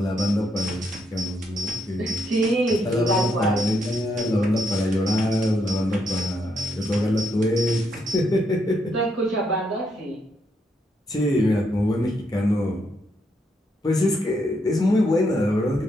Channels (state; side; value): normal; both; correlation 0.78